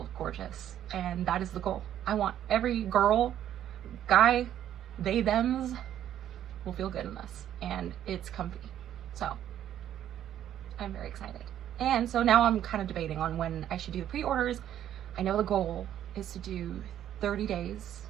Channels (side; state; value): left; quieter; 11.0 dB